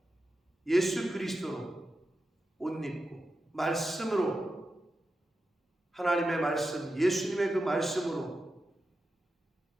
예수 그리스도로 옷 입고 말씀으로, 하나님의 말씀, 예수님의 그 말씀으로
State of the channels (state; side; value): normal; both; correlation 0.90